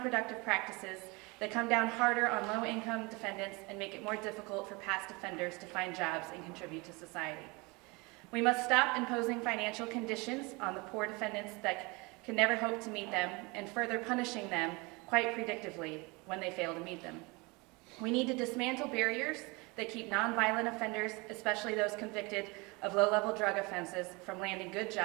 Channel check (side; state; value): left; quieter; 26.6 dB